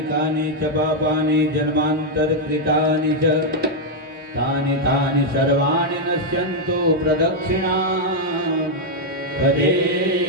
कानि च पापानि जन्मान्तरकृतानि च तानि तानि सर्वाणि नश्यन्तु प्रदक्षिणा पदे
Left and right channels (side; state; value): both; normal; correlation -0.01